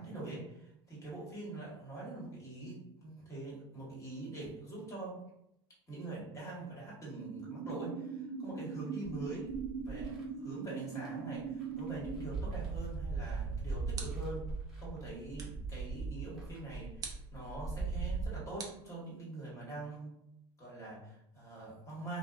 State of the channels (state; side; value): quieter; left; 3.4 dB